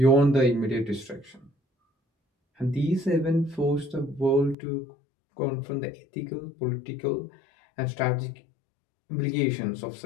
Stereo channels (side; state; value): right; drops out; at 4.5 s